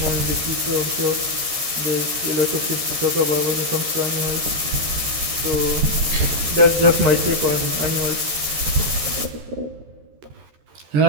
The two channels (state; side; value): late; left; 13 ms